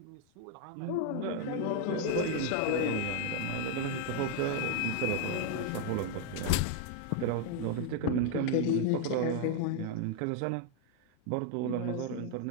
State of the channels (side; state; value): both; different; correlation 0.00